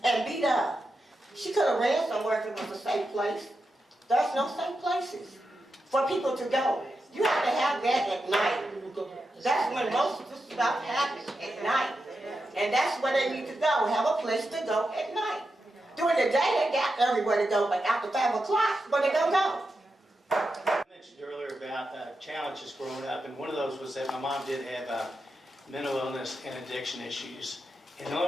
and beat up. She could have ran somewhere if it was a safe place. There's no safe places for people to go. You have to have that at night. That's when most of the stuff happens, at night. And that's where they need to go, have a place to go at night. During the day, they got everywhere to go, but after 5 o'clock, where they gonna go? I mentioned earlier about challenges growing up, and one of those was that my mom did have mental illness and addiction issues. And the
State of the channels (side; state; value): both; normal; correlation 0.88